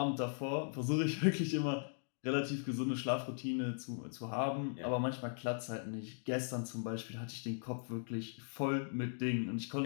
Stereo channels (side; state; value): right; silent; digital silence